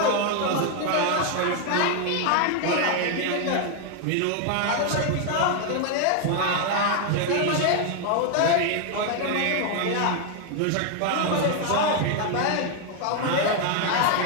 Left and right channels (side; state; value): both; different; correlation 0.01